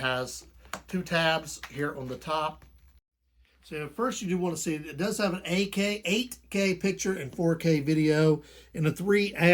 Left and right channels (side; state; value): both; identical; correlation 1.00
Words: two tabs here on the top. So first you do want to see, it does have an 8K picture and 4K video and a